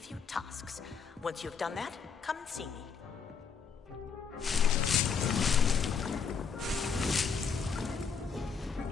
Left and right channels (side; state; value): right; quieter; 6.1 dB